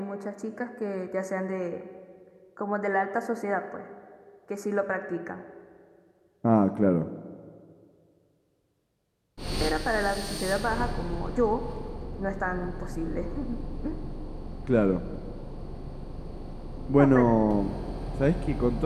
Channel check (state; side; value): identical; both; correlation 1.00